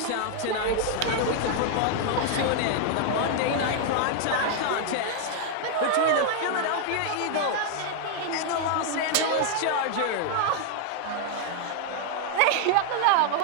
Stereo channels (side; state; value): both; different; correlation 0.00